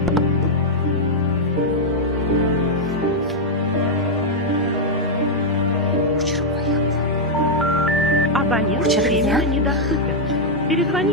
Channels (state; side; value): normal; both; correlation -0.03